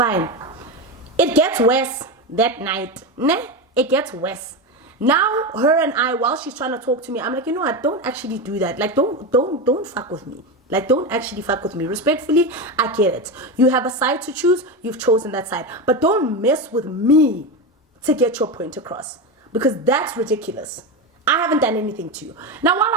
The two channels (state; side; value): normal; both; correlation 0.17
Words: It gets worse that night. Ne? It gets worse. Now, her and I, while she's trying to talk to me, I'm like, you know what? Don't actually do that. Like, don't fuck with me. Like, don't actually fuck with me. Respectfully, I get it. You have a side to choose. You've chosen that side. But don't mess with me to get your point across. Because that's ridiculous. I haven't done anything to you. Now, while